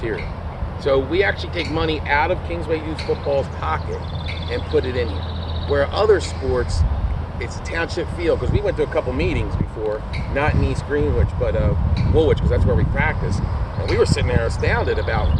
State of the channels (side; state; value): both; identical; correlation 1.00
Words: So we actually take money out of Kingsway Youth Football's pocket and put it in here. Where other sports, it's a township field, because we went to a couple meetings before, not in East Greenwich, but Woolwich, because that's where we practice. And we were sitting there astounded about